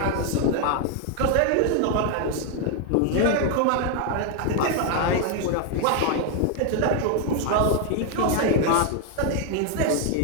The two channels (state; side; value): different; both; correlation 0.00